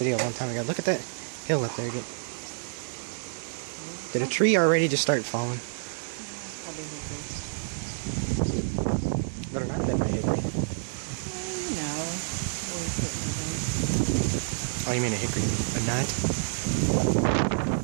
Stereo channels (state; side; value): silent; left; 58 dB below the other